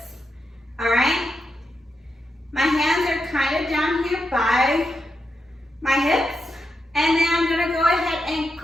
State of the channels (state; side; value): normal; both; correlation 0.85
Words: all right? My hands are kind of down here by my hips, and then I'm gonna go ahead and